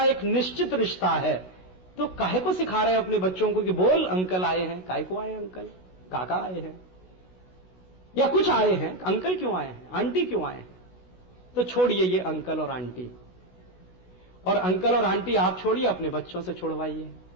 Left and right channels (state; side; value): late; right; 16 ms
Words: एक निश्चित रिश्ता है। तो काहे को सिखा रहे हैं अपने बच्चों को कि बोल अंकल आए हैं? काहे को आए अंकल? काका आए हैं या कुछ आए हैं, अंकल क्यों आए हैं, आंटी क्यों आए हैं? तो छोड़िए ये अंकल और आंटी, और अंकल और आंटी आप छोड़िए, अपने बच्चों से छोड़वाइए।